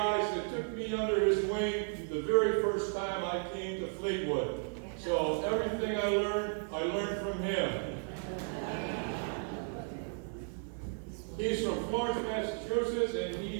that took me under his wing the very first time I came to Fleetwood. So everything I learned from him. He's from Florence, Massachusetts, and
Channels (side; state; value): left; silent; 55 dB below the other